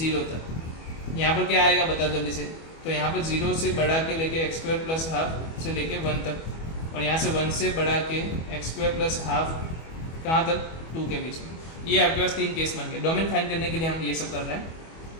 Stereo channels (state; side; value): late; right; 25 ms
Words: तक। यहाँ पर क्या आएगा बताओ जल्दी से। तो यहाँ पर 0 से बढ़ा के लेके x² प्लस हाफ से लेके 1 तक, और यहाँ से 1 से बढ़ा के x² प्लस हाफ कहाँ तक 2 के बीच में। ये आपके पास 3 केस बन गए। डोमेन फाइंड करने के लिए हम ये सब कर रहे हैं।